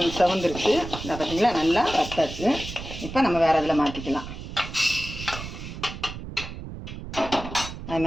செவந்துருச்சு. இந்த பார்த்தீங்களா, நல்லா வறுத்தாச்சு. இப்போ நம்ம வேறு இதில் மாற்றிக்கலாம். அது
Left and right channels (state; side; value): noise; right; rumble, 10 dB below the sound